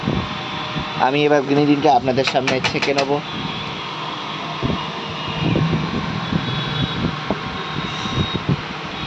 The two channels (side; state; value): both; identical; correlation 1.00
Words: আমি এবার গ্রিন টিটা আপনাদের সামনে ছেঁকে নেব।